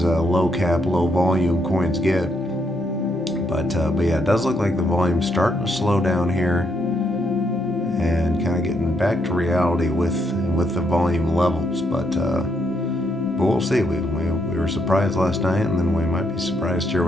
cap, low volume coins get. But yeah, it does look like the volume's starting to slow down here and kind of getting back to reality with the volume levels. But we'll see. We were surprised last night, and then we might be surprised here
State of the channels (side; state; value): both; normal; correlation 0.76